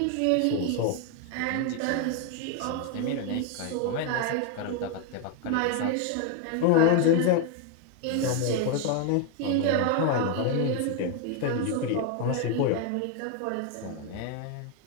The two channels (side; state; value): both; different; correlation 0.01